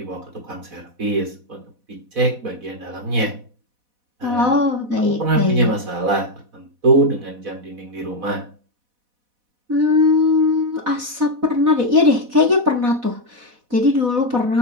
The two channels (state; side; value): late; left; 4.1 ms